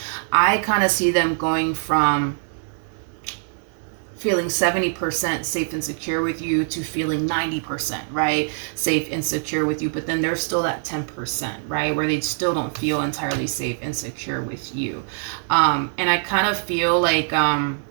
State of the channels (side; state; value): left; silent; digital silence